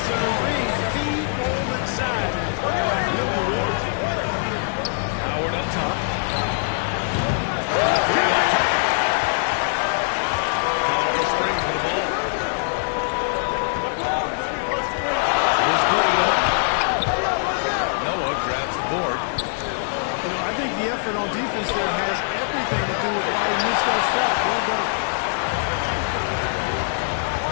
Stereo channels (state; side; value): silent; right; 63 dB below the other